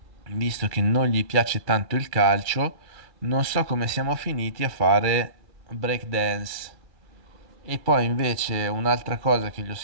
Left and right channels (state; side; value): late; left; 2.3 ms